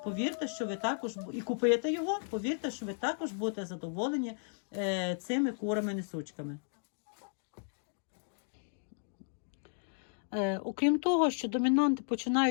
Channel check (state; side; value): silent; right; digital silence